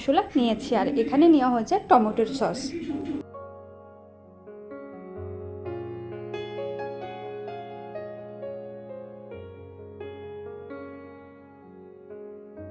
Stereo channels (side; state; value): both; identical; correlation 1.00